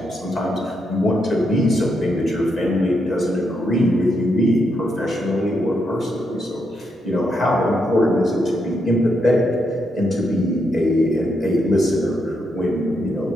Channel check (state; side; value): normal; both; correlation 0.80